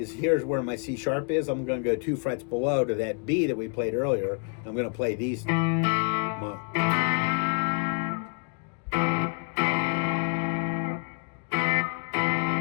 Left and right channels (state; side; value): quieter; right; 38.1 dB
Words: here's where my C sharp is. I'm going to go 2 frets below to that B that we played earlier. I'm going to play these.